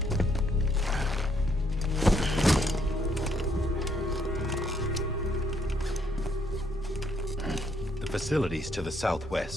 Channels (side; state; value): both; normal; correlation 0.71